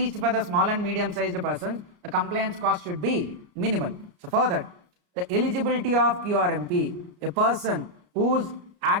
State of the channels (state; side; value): late; left; 33 ms